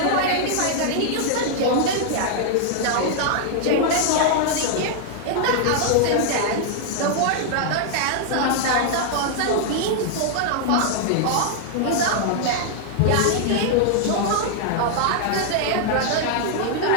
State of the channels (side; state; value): both; different; correlation -0.01